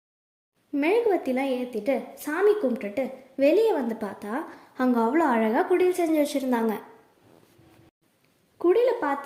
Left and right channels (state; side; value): identical; both; correlation 1.00